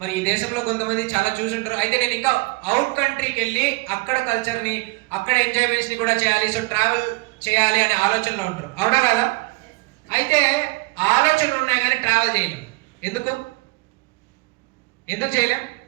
ఈ దేశంలో కొంతమంది చాలా చూసుంటారు, అయితే నేను ఇంకా అవుట్ కంట్రీకి వెళ్ళి అక్కడ కల్చర్ని అక్కడ ఎంజాయ్మెంట్స్ని కూడా చేయాలి, సో ట్రావెల్ చేయాలి అనే ఆలోచనలో ఉంటారు. అవునా కదా? అయితే ఆలోచనలు ఉన్నాయి కానీ ట్రావెల్ చేయలేం. ఎందుకు చేయలేం?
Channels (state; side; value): quieter; left; 26.1 dB